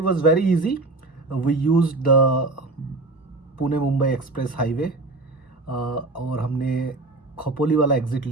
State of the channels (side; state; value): left; quieter; 3.1 dB